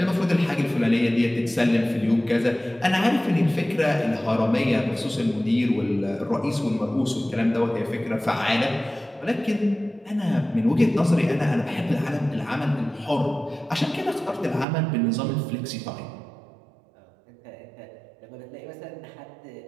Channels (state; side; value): drops out; left; at 14.7 s